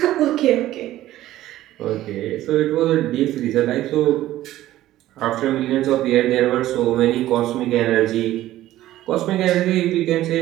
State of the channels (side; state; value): left; quieter; 14.5 dB